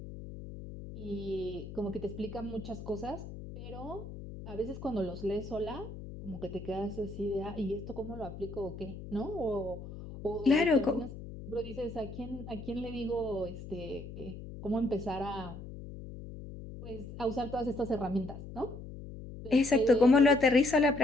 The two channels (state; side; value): noise; left; hum, 11 dB below the sound